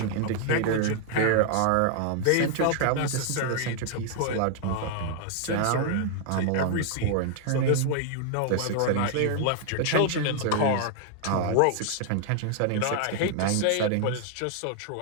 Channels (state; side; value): different; both; correlation 0.00